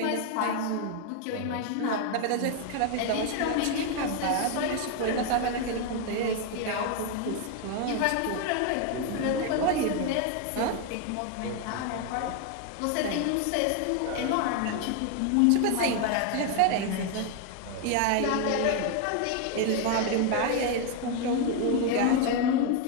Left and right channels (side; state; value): both; different; correlation 0.01